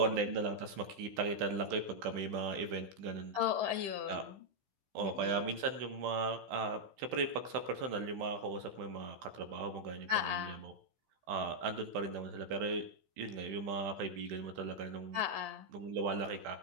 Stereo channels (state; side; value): late; left; 15 ms